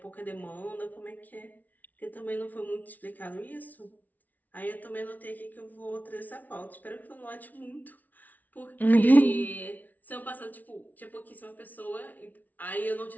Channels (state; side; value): late; right; 0.078 ms